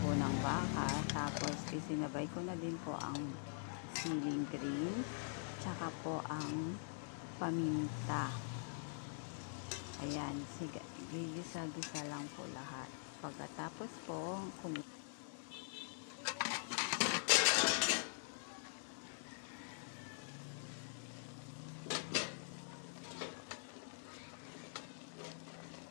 po ng baka. Tapos isinabay ko na din po ang siling green. Tsaka po ang paminta. Ayan, sige, gigisa-gisa lang po lahat. Pagkatapos po,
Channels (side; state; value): right; silent; digital silence